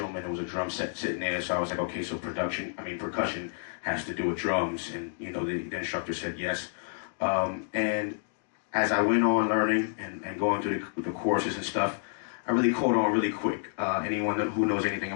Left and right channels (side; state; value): right; silent; digital silence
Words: and there was a drum set sitting there, so I was like, okay, so percussion has to do with drums, and you know, the instructor said yes. And as I went on learning and going through the courses and stuff, I really caught on really quick. Anyone who knows anything